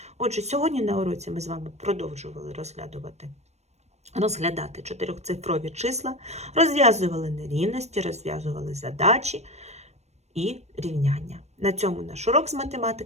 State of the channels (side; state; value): left; late; 0.32 ms